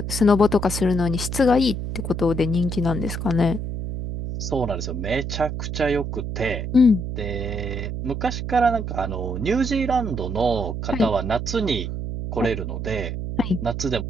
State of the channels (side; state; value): right; noise; hum, 4 dB below the sound